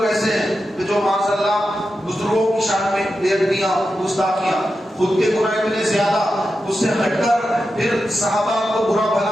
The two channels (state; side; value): normal; both; correlation 0.90